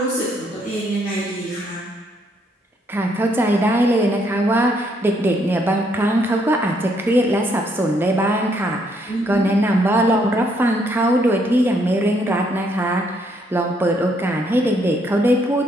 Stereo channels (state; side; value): normal; both; correlation 0.71